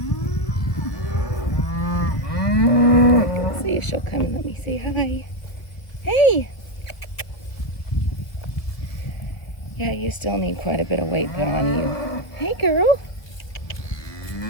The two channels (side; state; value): right; late; 1.0 ms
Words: Let's see if she'll come and let me say hi. Hey! Yeah, you still need quite a bit of weight put on you. Hey, girl.